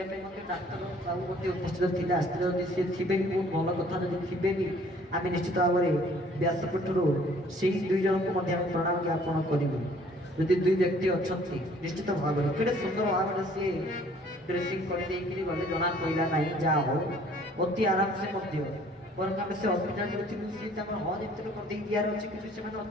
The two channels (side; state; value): both; normal; correlation 0.57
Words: ପାଇଁ ମଧ୍ୟ ଡାକ୍ତର ବାବୁ ମଧ୍ୟ ଉପସ୍ଥିତ ଥିଲେ, ଆସିଥିଲେ। ଯଦି ସିଏ ଥିବେ ବି ବହୁତ ଭଲ କଥା, ଯଦି ଥିବେ ବି ଆମେ ନିଶ୍ଚିତ ଭାବରେ ବ୍ୟାସପୀଠରୁ ସେଇ ଦୁଇ ଜଣଙ୍କୁ ମଧ୍ୟ ଆମେ ପ୍ରଣାମ ଜ୍ଞାପନ କରିବୁ। ଯଦି ଦୁଇ ବ୍ୟକ୍ତି ଅଛନ୍ତି ନିଶ୍ଚିତ ଭାବରେ କେଡ଼େ ସୁନ୍ଦର ଭାବରେ ସିଏ ଡ୍ରେସିଂ କରିଦେଇକିରି ଗଲେ, ଜଣା ପଡ଼ିଲା ନାହିଁ। ଯାହା ହଉ ଅତି ଆରାମସେ ମଧ୍ୟ, ବରଂ ଆମେ ସେ ହସ୍ପିଟାଲରେ ଥିଲୁ, ସେ ତାଙ୍କର ହଜ୍ ଏମିତି କରିଦେଇ ଦିଆର ଅଛି, କିନ୍ତୁ ସେମାନେ